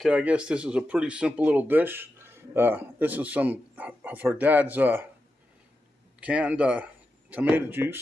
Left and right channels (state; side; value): normal; both; correlation 0.89